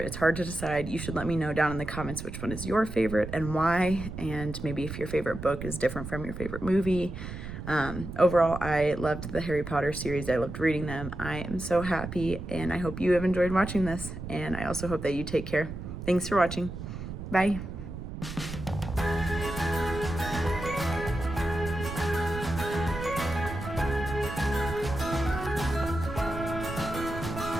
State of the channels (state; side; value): noise; right; rumble, 8 dB below the sound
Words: It's hard to decide. You should let me know down in the comments which one is your favorite and why, and maybe if your favorite book is different from your favorite movie. Overall, I loved the Harry Potter series. I loved reading them. I am so happy, and I hope you have enjoyed watching this, and I also hope that you take care. Thanks for watching. Bye.